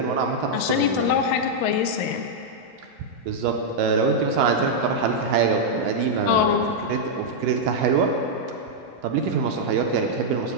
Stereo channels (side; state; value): both; normal; correlation -0.04